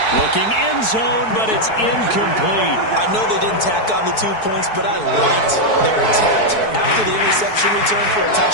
Looking end zone, but it's incomplete. I know they didn't tack on the 2 points, but I liked their attempt. After the interception return for a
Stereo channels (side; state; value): right; late; 4.6 ms